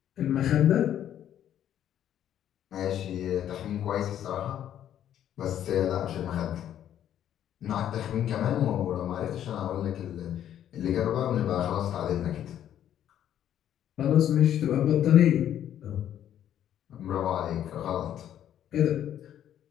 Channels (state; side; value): quieter; right; 10.7 dB